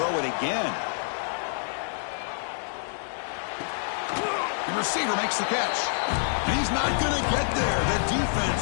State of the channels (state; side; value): silent; right; digital silence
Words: it again. The receiver makes the catch. And he's not going to get there. The